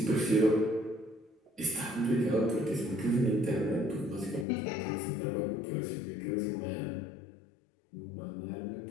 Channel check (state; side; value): drops out; right; at 4.5 s